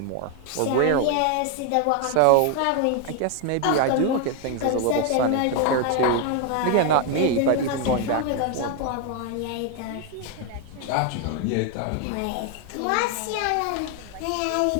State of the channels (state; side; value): different; both; correlation 0.00